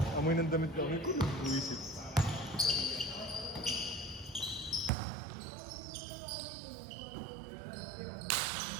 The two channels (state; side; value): drops out; left; at 4.9 s